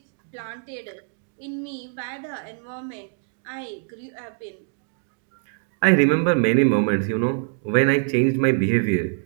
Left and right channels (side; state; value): left; silent; 57 dB below the other